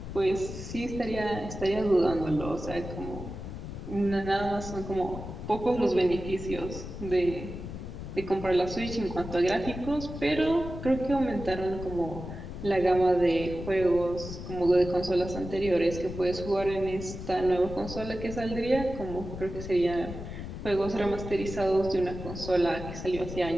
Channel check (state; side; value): noise; left; rumble, 9 dB below the sound